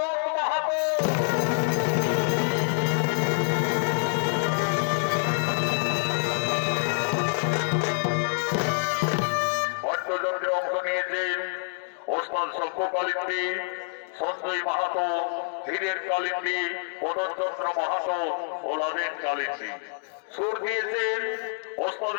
মাহাতো। বাদ্যযন্ত্রে অংশ নিয়েছেন ওস্তাদ সভ্য কালিন্দী, সঞ্জয় মাহাতো, হীরের কালিন্দী, মদনচন্দ্র মাহাতো ও লাদেন কালিন্দী। সুর দিয়েছেন ওস্তাদ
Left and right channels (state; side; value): silent; right; 60 dB below the other